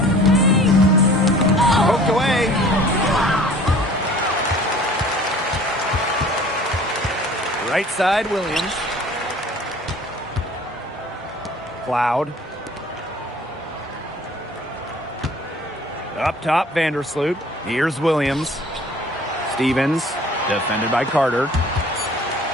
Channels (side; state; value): both; normal; correlation 0.49